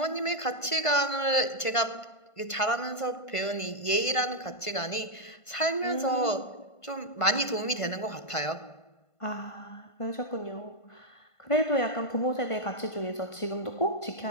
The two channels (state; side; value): late; right; 1.5 ms